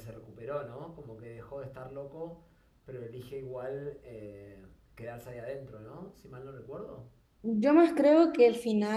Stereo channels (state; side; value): identical; both; correlation 1.00